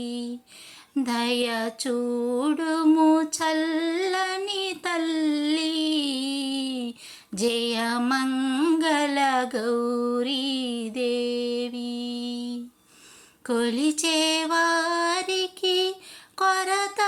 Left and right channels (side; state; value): both; identical; correlation 1.00